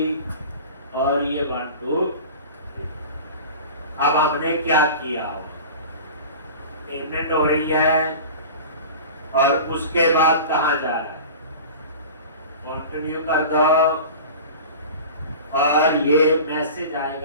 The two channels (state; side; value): inverted; both; correlation -0.35